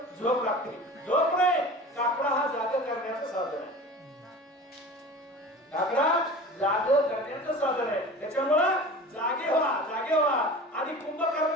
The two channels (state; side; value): normal; both; correlation 0.37